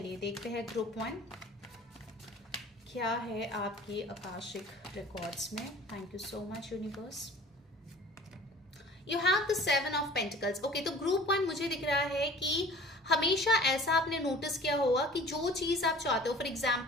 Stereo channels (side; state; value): both; normal; correlation 0.46